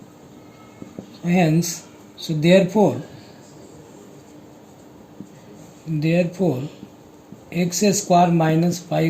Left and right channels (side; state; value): both; identical; correlation 1.00